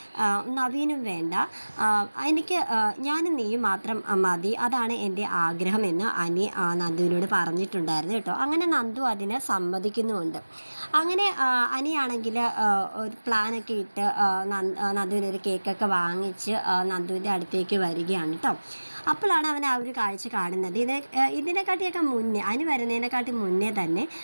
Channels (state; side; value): inverted; both; correlation -1.00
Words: നവീനും വേണ്ട, എനിക്ക് ഞാനും നീയും മാത്രം മതി, അതാണ് എൻ്റെ ആഗ്രഹമെന്ന് അനി നന്ദുവിനോട് പറഞ്ഞിട്ടുണ്ടായിരുന്നു കേട്ടോ. അങ്ങനെ നന്ദു അതിന് സമ്മതിക്കുന്നുമുണ്ട്. അങ്ങനെ അനിയാണെങ്കിൽ ഒരു പ്ലാനൊക്കെ ഇട്ട് നന്ദുവിനൊരു കേക്കൊക്കെ വാങ്ങിച്ച് നന്ദുവിൻ്റെ അടുത്തേക്ക് വരികയാണ് കേട്ടോ. അപ്പോഴാണ് അവൻ ആ ഒരു കാഴ്ച കാണുന്നത്. ഇതിനെക്കാട്ടിയൊക്കെ മുന്നേ, അനി വരുന്നതിനെക്കാട്ടി മുന്നേ തന്നെ